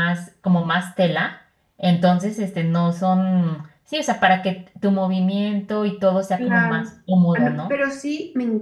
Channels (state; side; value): identical; both; correlation 1.00